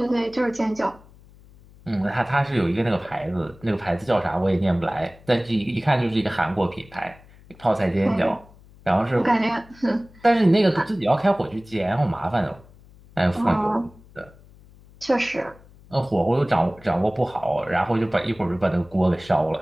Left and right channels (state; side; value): noise; left; hum, 24 dB below the sound